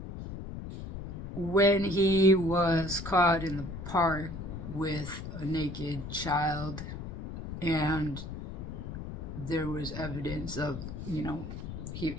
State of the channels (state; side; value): noise; left; rumble, 8 dB below the sound